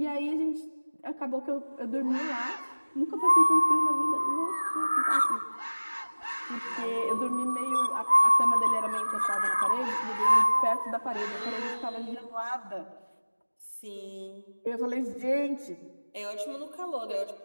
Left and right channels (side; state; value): both; inverted; correlation -1.00